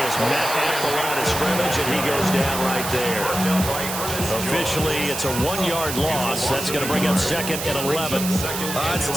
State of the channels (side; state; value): right; noise; hiss, 5 dB below the sound